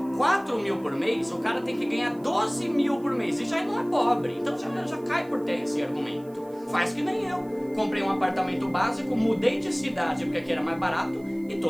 4 mil por mês, o cara tem que ganhar 12 mil por mês. E já não é pobre, então já cai por terra esse argumento. Faz que nem eu. Comprei um apartamento básico, mudei de cidade porque aqui era mais barato e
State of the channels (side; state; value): right; noise; hiss, 28 dB below the sound